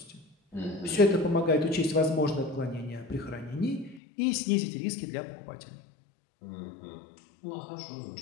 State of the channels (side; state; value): right; drops out; at 4.0 s